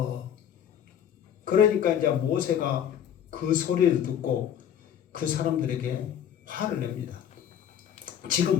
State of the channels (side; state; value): right; quieter; 9.5 dB